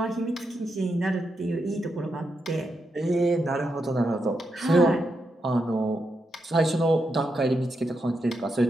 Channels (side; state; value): both; normal; correlation 0.84